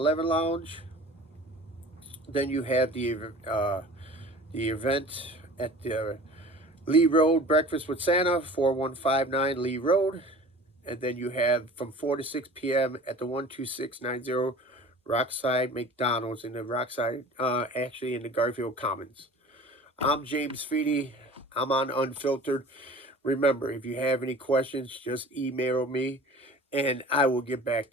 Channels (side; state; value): both; normal; correlation 0.43